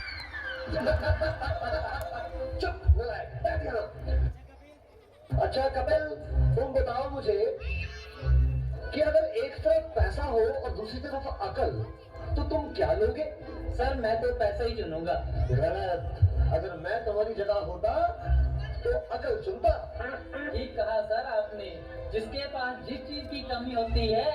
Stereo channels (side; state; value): both; identical; correlation 1.00